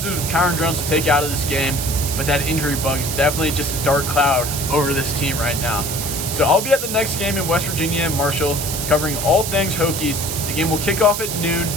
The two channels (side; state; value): right; noise; hiss, 4 dB below the sound